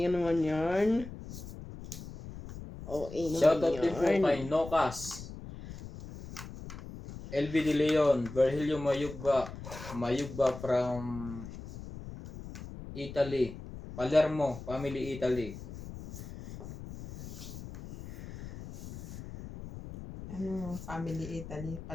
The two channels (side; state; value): left; noise; rumble, 12 dB below the sound